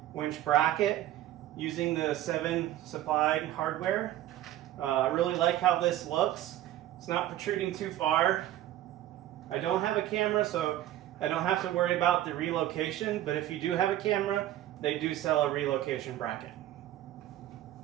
winch bracket using the 7 supplied hardware. I really like how this looks. It's not protruding too far. I don't have a camera, so I don't have to worry about the relocation, but if you do have a camera, they do sell a relocation bracket.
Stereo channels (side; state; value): left; quieter; 13.6 dB